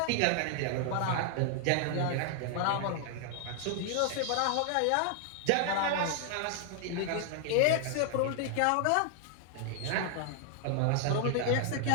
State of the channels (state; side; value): different; both; correlation 0.00